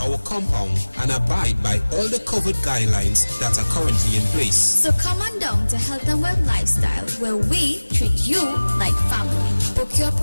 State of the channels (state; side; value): inverted; both; correlation -1.00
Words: our compound and abide by all the COVID guidelines that are currently in place. So come on down to Health and Wealth Lifestyle, where we treat you like family. Book your